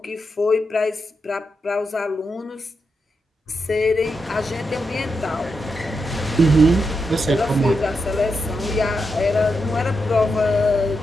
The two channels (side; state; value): both; normal; correlation 0.85